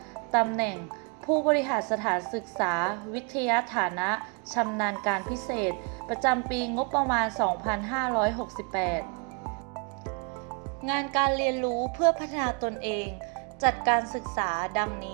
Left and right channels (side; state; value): left; quieter; 34.6 dB